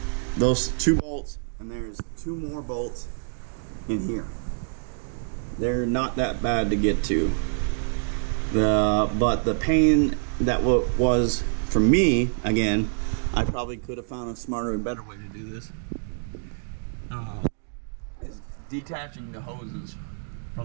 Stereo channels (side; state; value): left; silent; digital silence